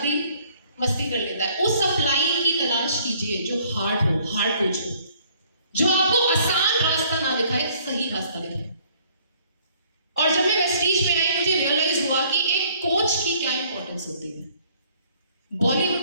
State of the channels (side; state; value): both; inverted; correlation -0.60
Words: भी मस्ती कर लेता है। उस अपलाइन की तलाश कीजिए जो हार्ड हो, हार्ड कोच हो, जो आपको आसान रास्ता ना दिखाए, सही रास्ता दिखाए। और जब मैं वेस्टीज में आई मुझे रियलाइज हुआ कि एक कोच की क्या इंपॉर्टेंस होती है। बॉलीवुड